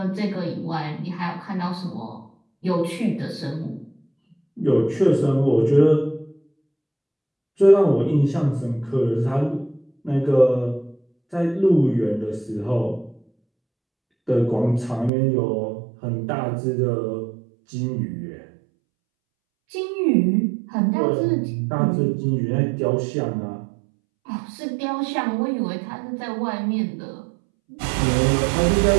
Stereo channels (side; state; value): left; drops out; at 15.1 s